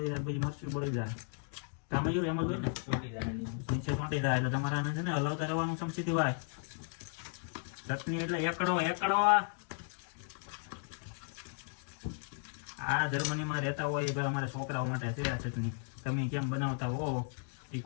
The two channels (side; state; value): right; silent; 54 dB below the other